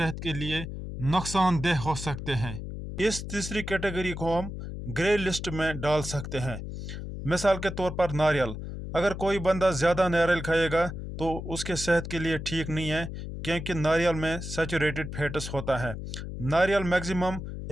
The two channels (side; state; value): left; noise; hum, 7 dB below the sound